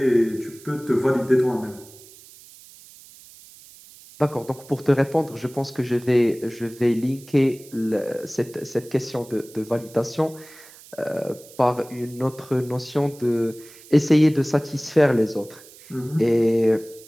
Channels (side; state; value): right; noise; hiss, 21 dB below the sound